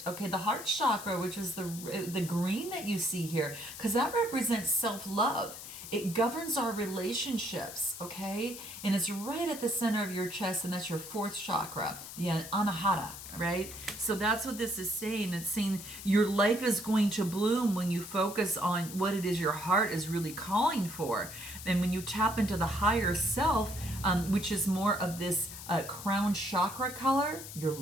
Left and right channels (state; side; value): noise; left; hiss, 11 dB below the sound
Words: Okay. The heart chakra, which is the green that you see here, because that represents self-love. It governs our relationships, okay? And it's right at the center of your chest, and that's your fourth chakra, the anahata, right? So that's what this is saying. It's saying your life is going to bloom when you focus on what it is your heart is really calling for. And when you tap into the higher self, which is more of this crown chakra color, your